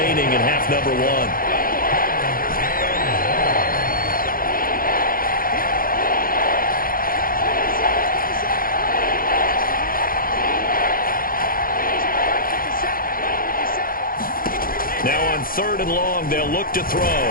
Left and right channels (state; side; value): late; right; 0.42 ms